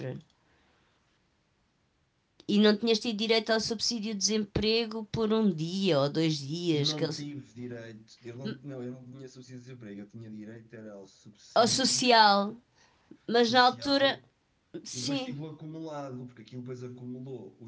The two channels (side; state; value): both; identical; correlation 1.00